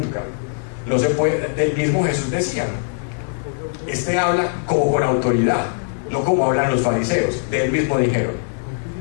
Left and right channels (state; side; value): silent; right; digital silence